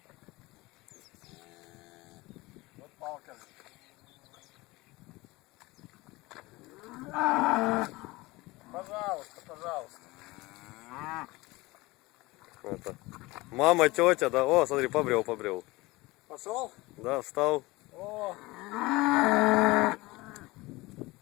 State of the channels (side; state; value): right; quieter; 21.6 dB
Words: Вот палка. Пожалуйста, пожалуйста. Это. Мама, тетя, да. О, смотри, побрел. Пошел? Да, встал. О.